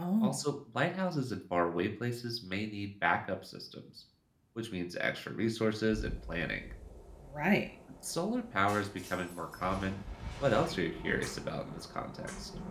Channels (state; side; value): identical; both; correlation 1.00